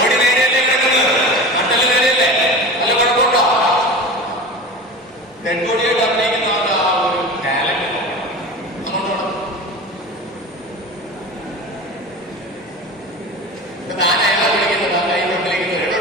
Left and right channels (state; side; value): normal; both; correlation 0.32